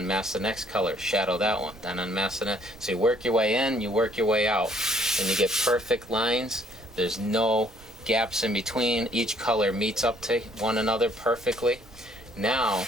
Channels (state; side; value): noise; right; rumble, 23 dB below the sound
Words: the next color, shadow that one. Then unmask the next. So you work your way in, you work your way out, and you get perfect lines. There's no gaps in between. Each color meets up to one another perfectly. Now,